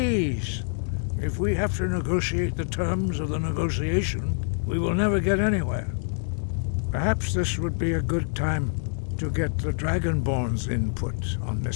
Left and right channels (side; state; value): right; silent; digital silence